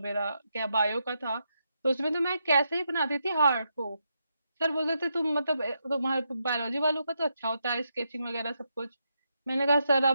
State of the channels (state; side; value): inverted; both; correlation -0.82